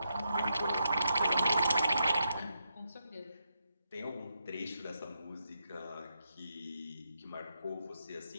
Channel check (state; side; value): inverted; both; correlation -0.83